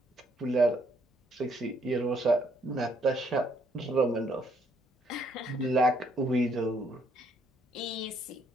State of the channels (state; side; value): normal; both; correlation 0.69